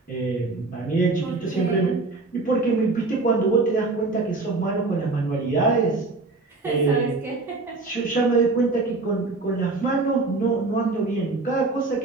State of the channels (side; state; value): left; quieter; 3.5 dB